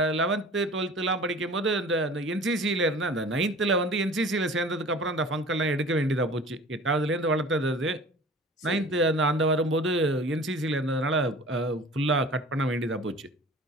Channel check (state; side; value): normal; both; correlation 0.43